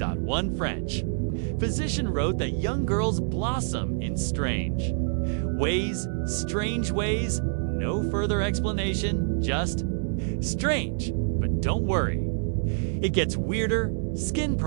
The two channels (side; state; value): left; silent; digital silence